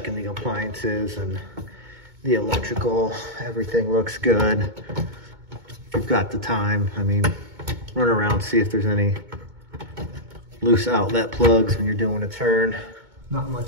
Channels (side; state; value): left; late; 2.2 ms